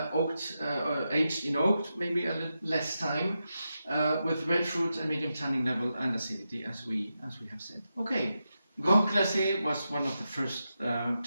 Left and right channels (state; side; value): inverted; both; correlation -0.88